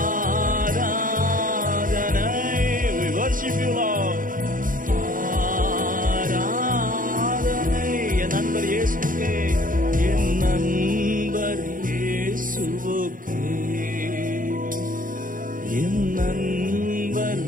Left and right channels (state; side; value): late; left; 0.40 ms